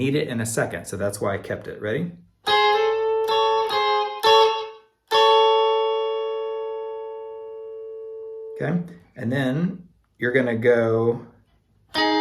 it in a second, so that's why I kept it. Ready? Okay, and then you're gonna go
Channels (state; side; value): identical; both; correlation 1.00